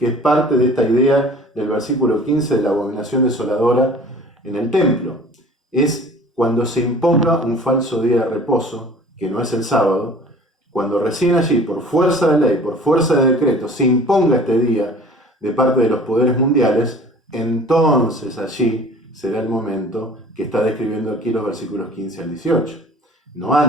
es parte de esta idea del versículo 15 de la abominación desoladora en el templo. Es cuando se imponga un falso día de reposo, que no es el sábado, cuando recién allí, por fuerza de ley, por fuerza de decreto, se imponga este día de parte de los poderes mundiales, entonces allí será el momento que está describiendo aquí los versículos 15 al 18, no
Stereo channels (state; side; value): normal; both; correlation 0.46